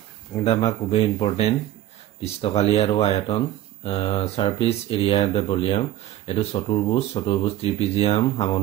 এটা আমাৰ খুবেই ইম্পৰ্টেণ্ট পৃষ্ঠকালি আৰু আয়তন সাৰফেস এৰিয়া দ্য ভলিউম। এইটো চতুৰ্ভুজ ত্ৰিপিজিয়াম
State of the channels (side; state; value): left; quieter; 13.4 dB